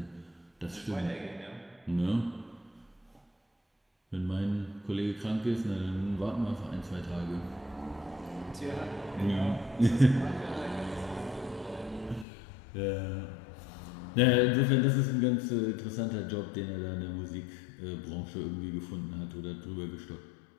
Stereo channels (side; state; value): right; drops out; at 12.2 s